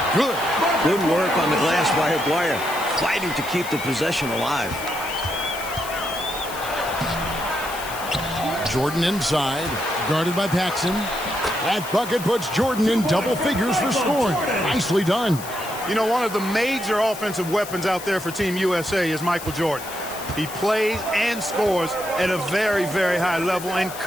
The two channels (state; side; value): noise; left; hiss, 13 dB below the sound